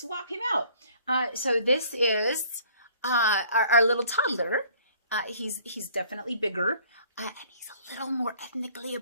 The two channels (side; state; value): both; inverted; correlation -0.56